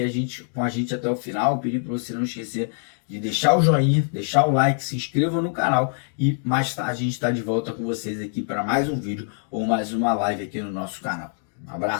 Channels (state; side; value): silent; right; 63 dB below the other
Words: com a gente até o final. Pedir para você não esquecer de deixar o joinha, deixar o like, se inscreva no canal, e mais tarde a gente está de volta com vocês aqui para mais um vídeo ou mais uma live aqui no nosso canal. Um